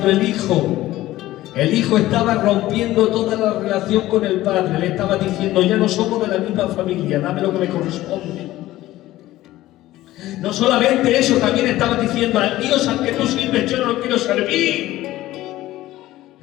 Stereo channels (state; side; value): quieter; right; 15.9 dB